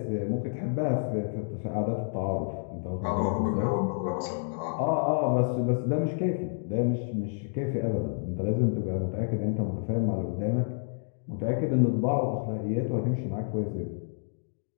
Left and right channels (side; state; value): right; silent; digital silence